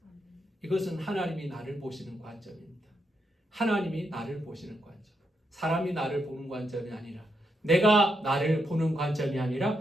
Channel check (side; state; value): both; normal; correlation 0.81